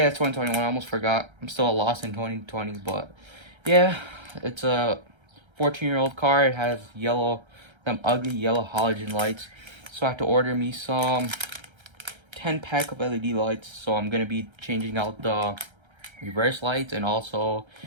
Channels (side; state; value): left; late; 1.3 ms